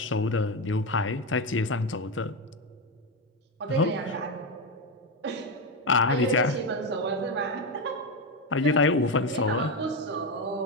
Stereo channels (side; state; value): both; normal; correlation 0.12